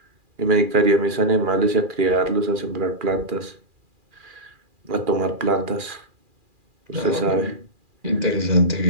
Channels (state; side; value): late; left; 2.4 ms